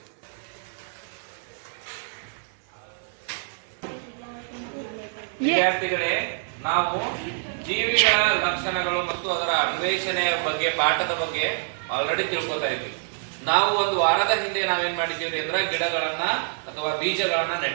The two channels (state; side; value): silent; left; 61 dB below the other